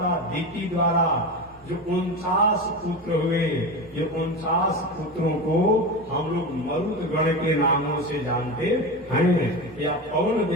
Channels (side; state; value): both; normal; correlation 0.23